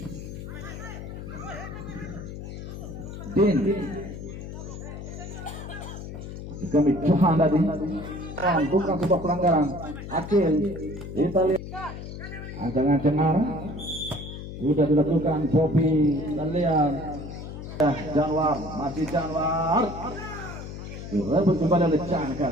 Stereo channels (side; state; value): left; noise; hum, 9 dB below the sound